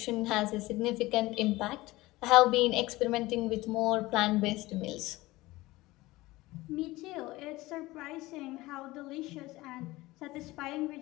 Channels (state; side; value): quieter; right; 19.5 dB